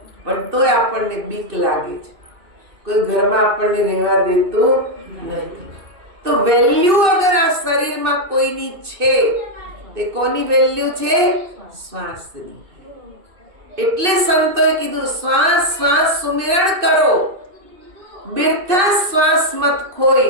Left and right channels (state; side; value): late; left; 2.6 ms